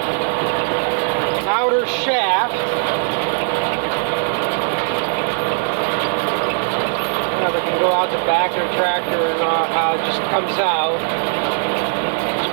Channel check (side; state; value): left; silent; 66 dB below the other